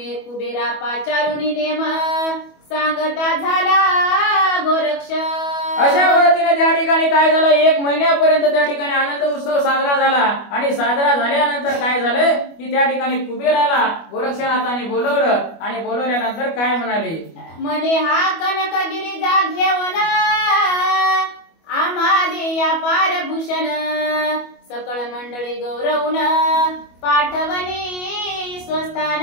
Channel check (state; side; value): late; right; 25 ms